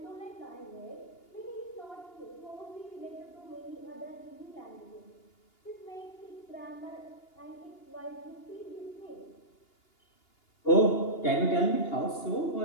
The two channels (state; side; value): late; right; 2.8 ms